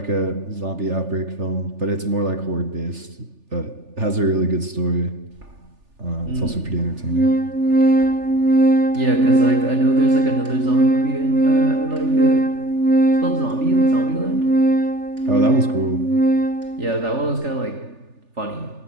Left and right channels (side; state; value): left; late; 3.4 ms